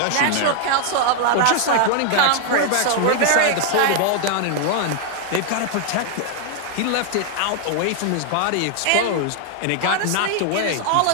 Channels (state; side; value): different; both; correlation 0.00